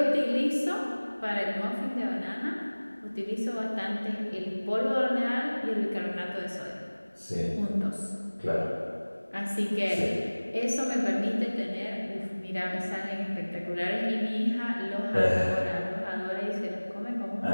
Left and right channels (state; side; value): inverted; both; correlation -1.00